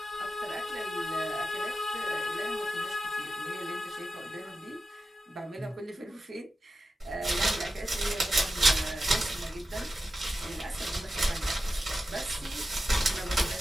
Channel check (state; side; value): normal; both; correlation 0.91